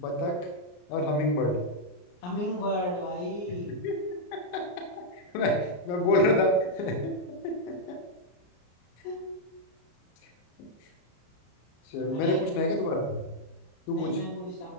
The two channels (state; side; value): late; right; 34 ms